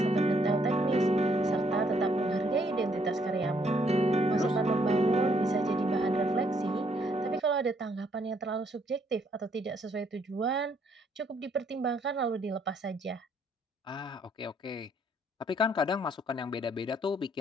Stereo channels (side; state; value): both; normal; correlation 0.69